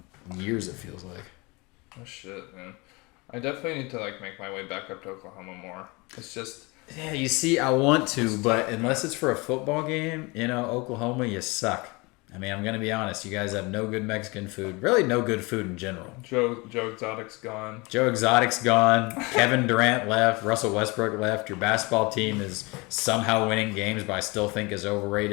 in years, it feels like. Oh shit, man. I definitely need to like make my way back up to Oklahoma more. It's just... Yeah, you see, I want to, but unless it's for a football game, Oklahoma, you suck. I mean, I'm going to be honest. You guys have no good Mexican food. Really no good food in general. Joe Exotic's gone. Joe Exotic's gone. Kevin Durant left. Russell Westbrook left. Your basketball team is somehow winning games, but I still think is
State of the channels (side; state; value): right; quieter; 26.3 dB